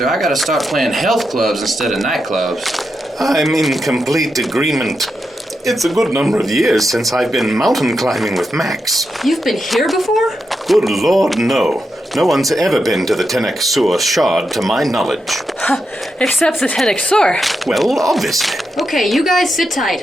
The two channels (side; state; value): both; normal; correlation 0.86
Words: I gotta start playing health clubs instead of nightclubs. I'm in complete agreement. It's a good number of years since I've been mountain climbing with Max. You've been here before? Good Lord, no. No one's ever been to the Soor Shard, to my knowledge. Except the Soor. Well, obviously. Okay, you guys sit